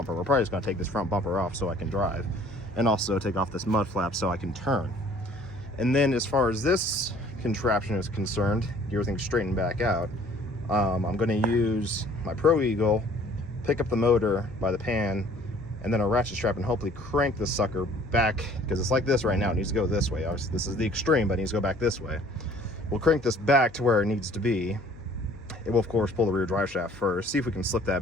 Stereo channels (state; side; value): noise; left; hum, 22 dB below the sound